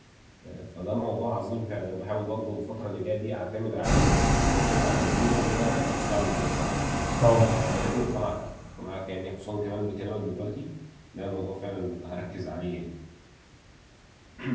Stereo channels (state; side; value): identical; both; correlation 1.00